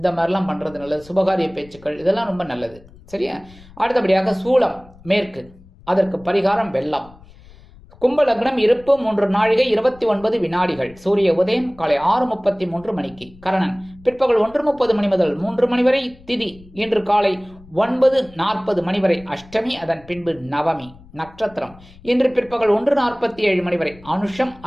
மாதிரிலாம் பண்ணுறது நல்லது. சுபகாரிய பேச்சுக்கள் இதெல்லாம் ரொம்ப நல்லது. சரியா? அடுத்தபடியாக சூலம் மேற்கு, அதற்கு பரிகாரம் வெள்ளம். கும்ப லக்னம், இருப்பு 3 நாழிகை 29 வினாடிகள். சூரிய உதயம் காலை 6:33 மணிக்கு. கரணன் பிற்பகல் 1:30 மணி முதல் 3 மணி வரை. திதி இன்று காலை 9:40 மணி வரை அஷ்டமி, அதன் பின்பு நவமி. நட்சத்திரம் இன்று பிற்பகல் 1:47 மணி வரை அனுஷம்,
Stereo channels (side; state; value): left; noise; rumble, 23 dB below the sound